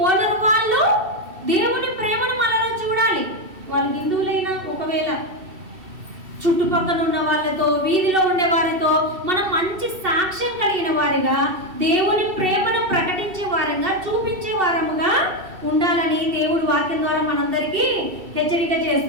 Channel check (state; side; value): late; left; 2.7 ms